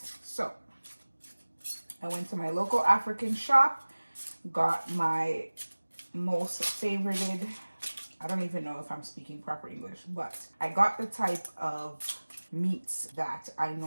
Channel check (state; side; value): inverted; both; correlation -1.00